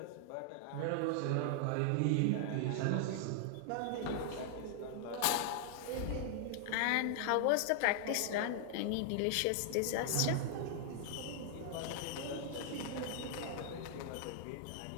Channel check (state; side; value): different; both; correlation 0.00